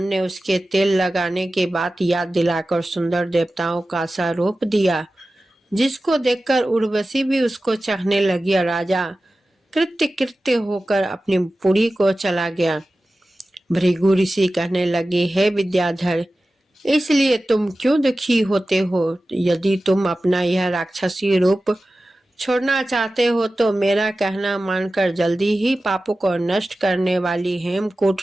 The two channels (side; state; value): both; normal; correlation 0.95